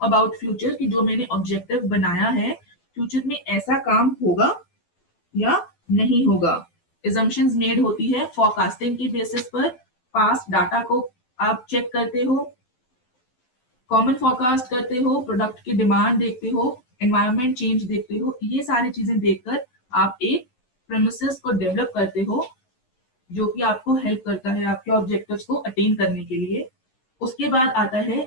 अबाउट फ्यूचर कि जो मैंने ऑब्जेक्टिव बनाया है फ्यूचर में ऐसा काम होगा या नहीं होगा। एजम्पशंस मेड होती है फोरकास्टिंग की बेसिस पर। पास्ट डाटा को आप चेक करते हो, कॉमन फोरकास्ट करते हो, प्रोडक्ट की डिमांड देखते हो, एनवायरनमेंट चेंज देखते हो। ये सारी चीजें देखकर आप एक प्रेमिसेस को डेवलप करते हो जो कि आपको हेल्प करता है आपके ऑब्जेक्टिव्स को अटेन करने के लिए। उसके बाद आता है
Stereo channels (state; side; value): late; right; 12 ms